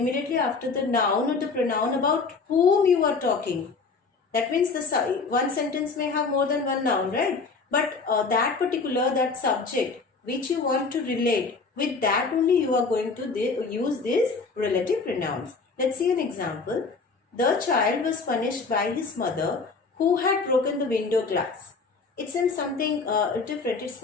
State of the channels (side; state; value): right; quieter; 4.5 dB